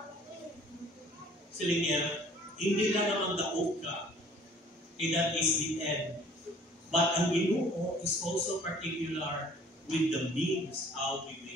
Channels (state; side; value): normal; both; correlation 0.54